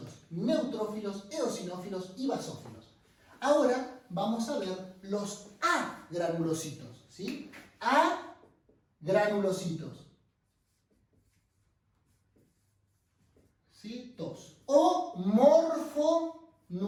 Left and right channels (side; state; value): both; identical; correlation 1.00